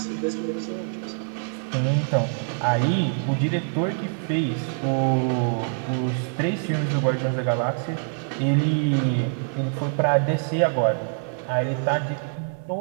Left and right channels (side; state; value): left; silent; 62 dB below the other